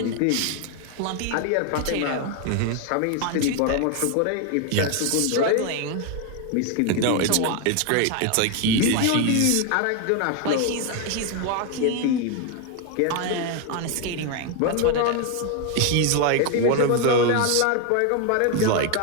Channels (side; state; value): both; different; correlation 0.01